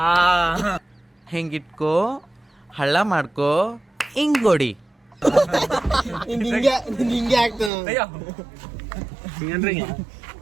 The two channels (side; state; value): left; drops out; at 7.7 s